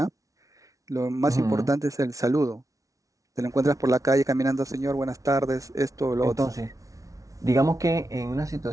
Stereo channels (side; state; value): left; late; 0.17 ms